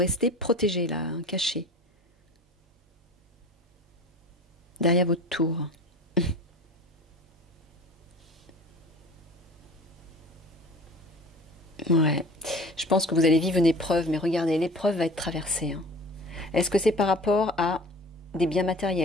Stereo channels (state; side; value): normal; both; correlation 0.40